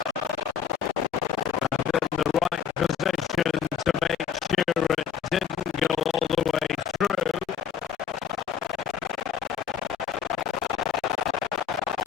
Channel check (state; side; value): quieter; right; 7.7 dB